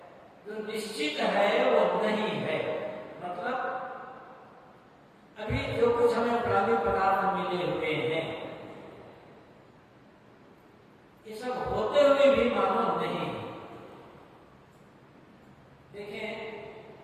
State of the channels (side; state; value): both; identical; correlation 1.00